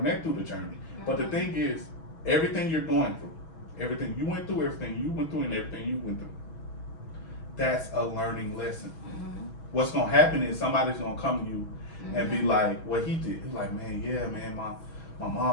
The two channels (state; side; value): late; right; 6.2 ms